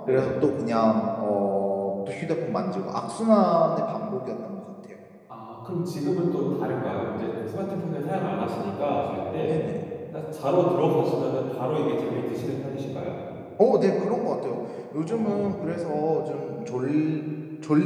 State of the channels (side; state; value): both; identical; correlation 1.00